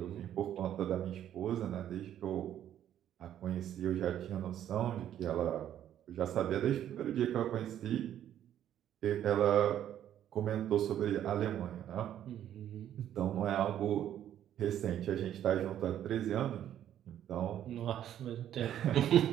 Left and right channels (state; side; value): quieter; left; 10.9 dB